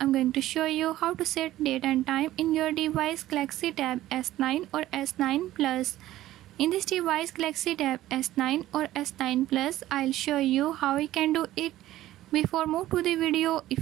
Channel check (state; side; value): quieter; left; 14.7 dB